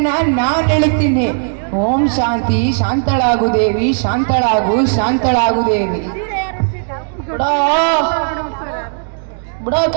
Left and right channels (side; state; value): left; silent; digital silence